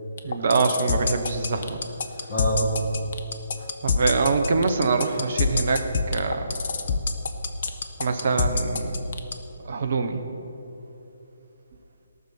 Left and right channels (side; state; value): both; inverted; correlation -0.74